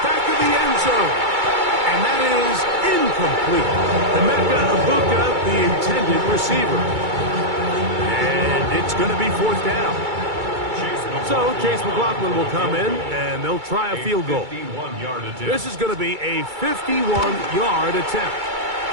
to the end zone. And that is incomplete. Emeka Egbuka, the intended receiver. And it's going to be 4th down. So Chase McLaughlin will come in, and they'll try a field goal. This is going to be a 51-yard attempt.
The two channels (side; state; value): left; late; 2.3 ms